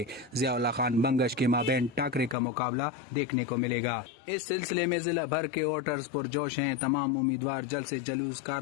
ज़ियाउल्लाह खान बंगश के माबैन टाकरे का मुकाबला देखने को मिलेगा। इस सिलसिले में ज़िला भर के वोटर्स पुरजोश हैं। तमाम उम्मीदवार जल्द से जलूस,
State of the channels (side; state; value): right; drops out; at 2.4 s